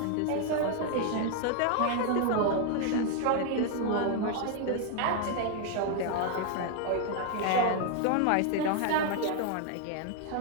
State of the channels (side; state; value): both; different; correlation 0.00